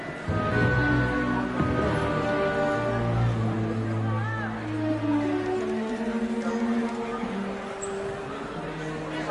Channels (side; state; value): both; identical; correlation 1.00